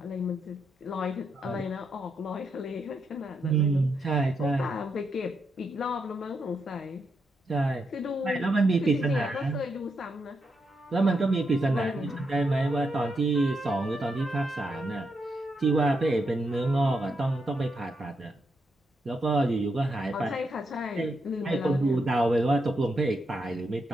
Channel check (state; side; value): normal; both; correlation 0.82